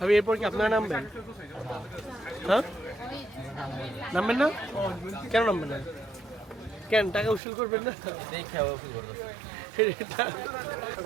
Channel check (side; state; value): left; drops out; at 7.4 s